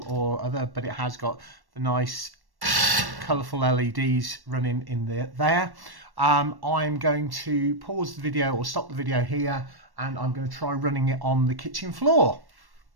or other, but it has got the nice colourful LEDs running in there. I'm going to pause the video or stop the video here, and I'm going to try running it on the kitchen floor.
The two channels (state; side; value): late; left; 1.1 ms